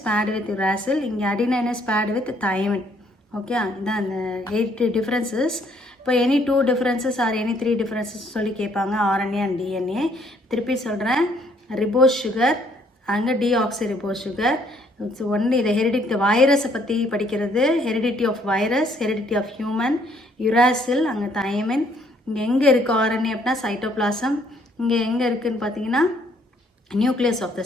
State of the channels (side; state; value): both; normal; correlation 0.65